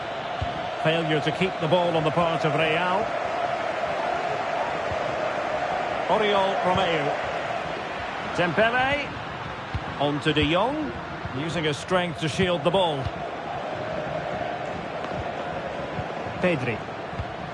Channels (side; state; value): both; identical; correlation 1.00